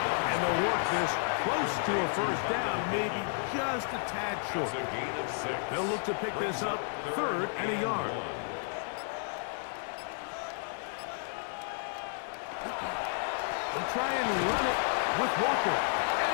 And they'll work this close to a first down, maybe just a tad short. They'll look to pick this up 3rd and a yard. They'll try and run it with Walker.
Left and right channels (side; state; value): right; silent; digital silence